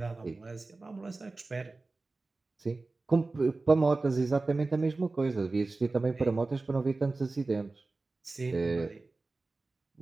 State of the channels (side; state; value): left; quieter; 3.4 dB